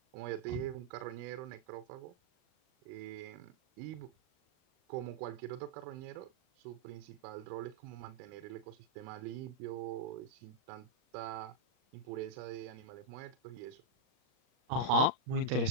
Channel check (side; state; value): left; late; 39 ms